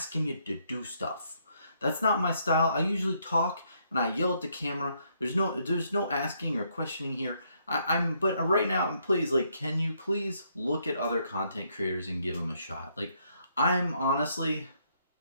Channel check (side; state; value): both; inverted; correlation -0.73